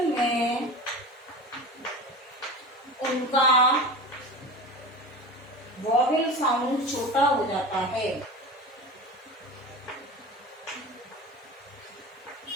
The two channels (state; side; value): normal; both; correlation 0.31